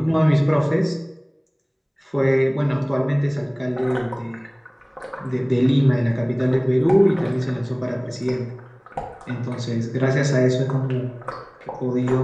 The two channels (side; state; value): both; identical; correlation 1.00